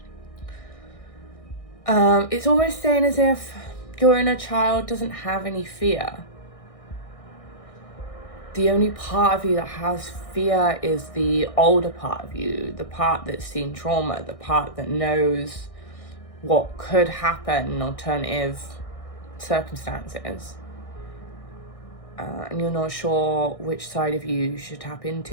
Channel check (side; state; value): right; late; 1.6 ms